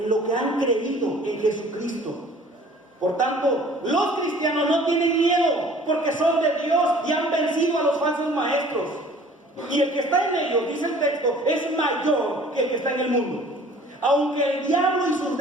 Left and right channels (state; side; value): normal; both; correlation 0.51